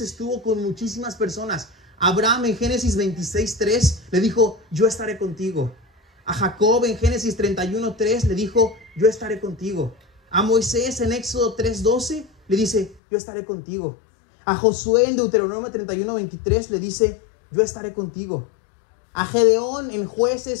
con muchísimas personas. Abraham en Génesis 26:3 le dijo, yo estaré contigo. A Jacob en Génesis 31:3 le dijo, yo estaré contigo. A Moisés en Éxodo 3:12 le dice, yo estaré contigo. A Josué en Deuteronomio 31:23 le dice, yo estaré contigo. A Gedeón en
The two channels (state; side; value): drops out; right; at 13.0 s